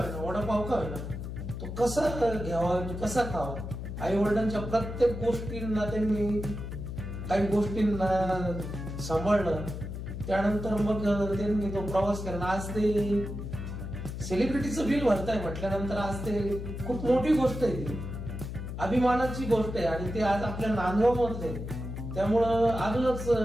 वडापाव का होईना, तो कसा घ्यावा, कसा खावा, आई वडिलांच्या प्रत्येक गोष्टींना त्यांनी काही गोष्टींना सांभाळलं. त्यानंतर मग त्यांनी तो प्रवास केला. आज ते सेलिब्रिटीचं बिल भरताय म्हटल्यानंतर आज ते खूप मोठी गोष्ट आहे, ती अभिमानाची गोष्ट आहे. आणि ते आज आपल्या नांदगावमध्ये आहे. त्यामुळं अजूनच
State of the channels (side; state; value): left; noise; hum, 7 dB below the sound